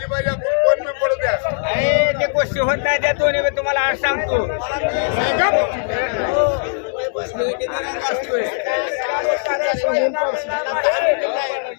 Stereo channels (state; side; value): silent; right; digital silence